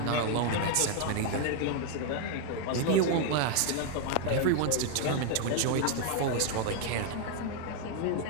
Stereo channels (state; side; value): different; both; correlation 0.00